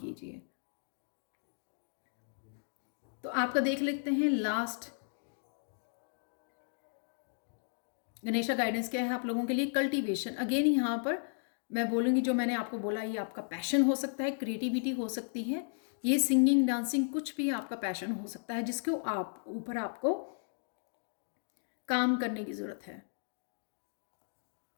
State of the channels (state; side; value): silent; right; digital silence